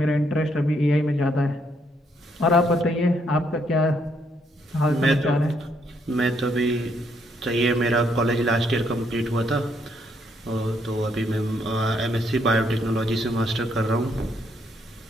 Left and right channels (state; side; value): normal; both; correlation 0.73